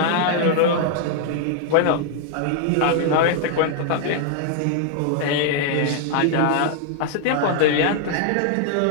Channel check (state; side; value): different; both; correlation 0.00